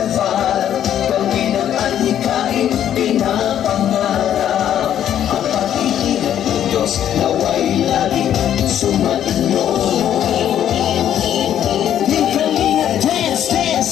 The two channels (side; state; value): right; quieter; 10.5 dB